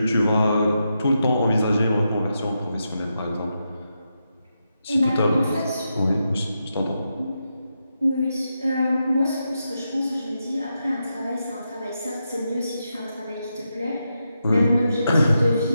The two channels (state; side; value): inverted; both; correlation -0.86